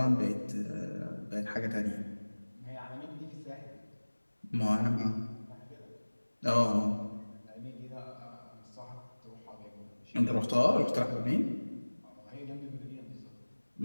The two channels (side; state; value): both; inverted; correlation -1.00